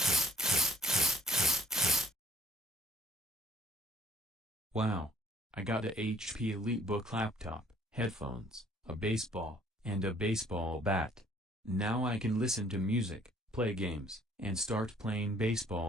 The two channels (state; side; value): normal; both; correlation 0.59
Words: Wow. I got a HP EliteBook laptop, headphones, a baseball, and a baseball bat. Now I can listen to music, play games, and start playing